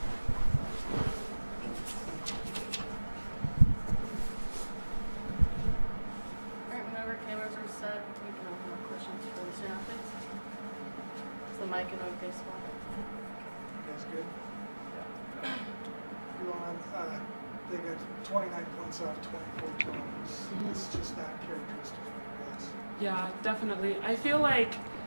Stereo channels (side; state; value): both; inverted; correlation -1.00